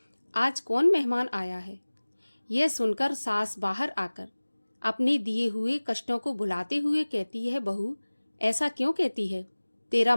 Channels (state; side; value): inverted; both; correlation -1.00